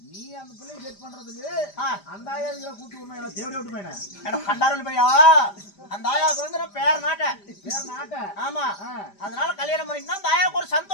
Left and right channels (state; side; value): late; right; 5.0 ms